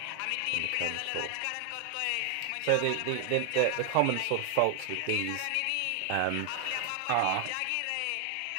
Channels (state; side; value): different; both; correlation 0.00